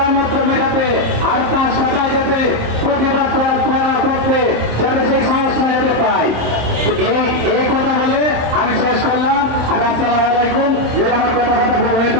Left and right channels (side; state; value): left; late; 27 ms